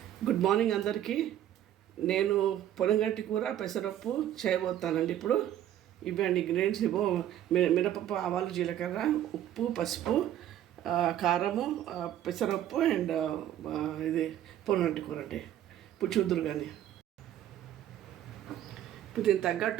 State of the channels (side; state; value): left; quieter; 11.6 dB